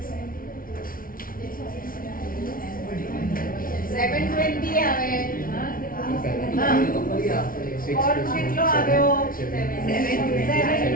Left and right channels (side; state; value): right; late; 0.42 ms